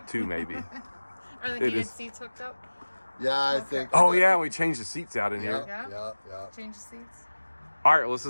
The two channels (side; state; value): both; inverted; correlation -1.00